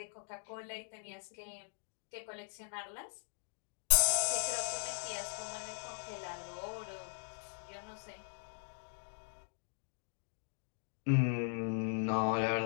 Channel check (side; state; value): right; silent; digital silence